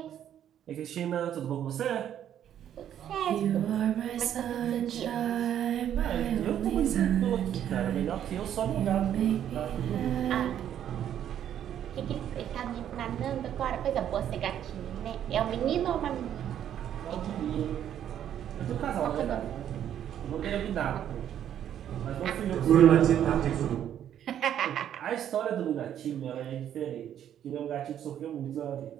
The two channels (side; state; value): left; quieter; 10.2 dB